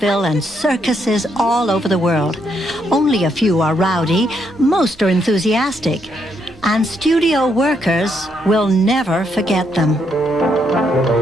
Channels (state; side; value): normal; both; correlation 0.76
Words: and circuses all over the world. Only a few are rowdy, most are enthusiastic, and studio workers will never forget them.